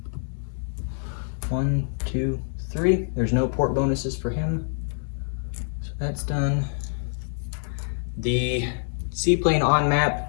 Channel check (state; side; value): silent; right; digital silence